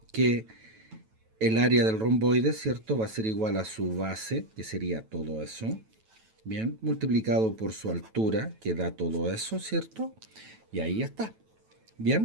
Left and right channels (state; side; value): late; left; 9.1 ms